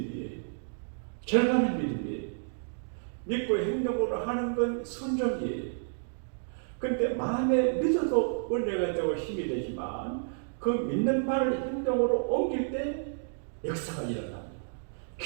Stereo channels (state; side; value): silent; left; digital silence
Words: 절반의 믿음이에요. 믿고 행동으로 하는 건 순종이에요. 근데 마음에 믿어도 은혜가 되고 힘이 되지만 그 믿는 바를 행동으로 옮길 때 역사가 일어납니다.